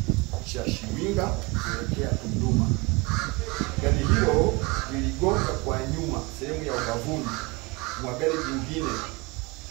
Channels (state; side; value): quieter; left; 26.2 dB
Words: cha Shiwinga kuelekea Tunduma. Gari hilo liligonga kwa nyuma sehemu ya ubavuni mwa gari jingine